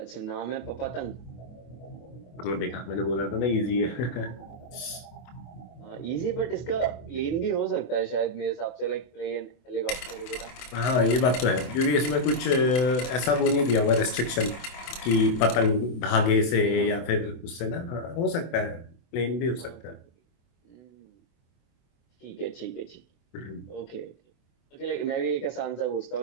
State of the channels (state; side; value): late; right; 24 ms